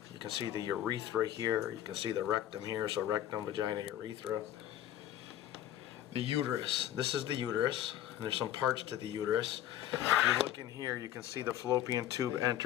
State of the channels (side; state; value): right; quieter; 12.0 dB